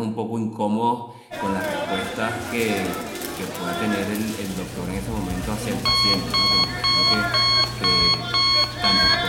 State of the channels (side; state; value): both; identical; correlation 1.00